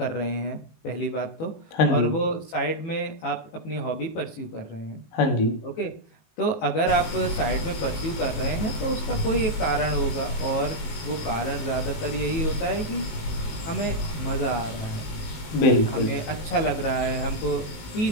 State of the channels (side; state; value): right; late; 19 ms